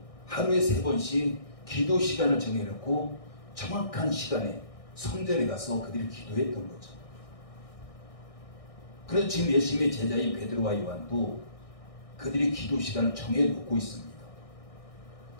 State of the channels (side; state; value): right; late; 1.6 ms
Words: 하루에 3번씩 기도 시간을 정해놓고 정확한 시간에 성전에 가서 그들이 기도했던 거죠. 그래서 지금 예수님의 제자인 베드로와 요한도 그들이 기도 시간을 정해놓고 있습니다.